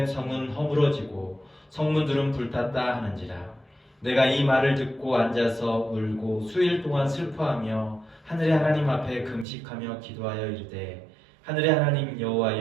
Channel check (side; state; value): left; drops out; at 9.5 s